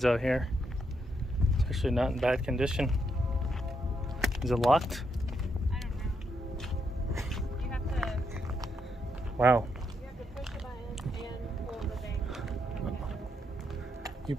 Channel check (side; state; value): both; normal; correlation 0.79